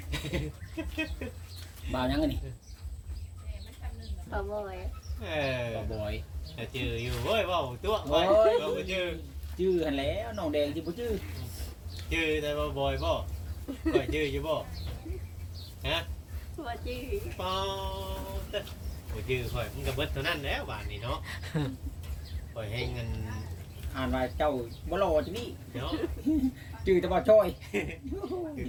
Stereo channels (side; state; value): both; identical; correlation 1.00